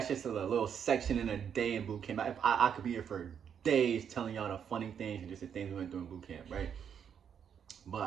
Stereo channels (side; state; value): left; quieter; 8.0 dB